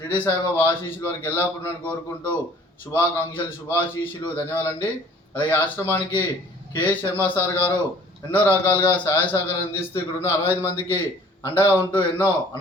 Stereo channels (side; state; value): both; normal; correlation 0.53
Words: సాయిబాబా ఆశీస్సులు వారికి ఎల్లప్పుడూ కోరుకుంటూ శుభాకాంక్షలు, శుభాశీస్సులు, ధన్యవాదాలండి. అలాగే ఆశ్రమానికి కెఎస్ శర్మ సార్ గారు ఎన్నో రకాలుగా సహాయ సహకారం అందిస్తూ ఇక్కడ ఉన్న 65 మందికి అండగా ఉంటూ ఎన్నో